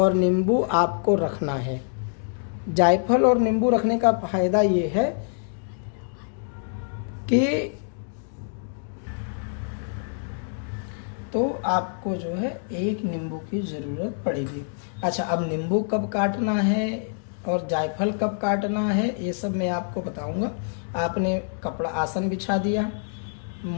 नींबू आपको रखना है। जायफल और नींबू रखने का फायदा ये है कि तो आपको जो है एक नींबू की ज़रूरत पड़ेगी। अच्छा, अब नींबू कब काटना है और जायफल कब काटना है, ये सब मैं आपको बताऊंगा। आपने कपड़ा आसन बिछा दिया,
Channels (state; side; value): silent; right; digital silence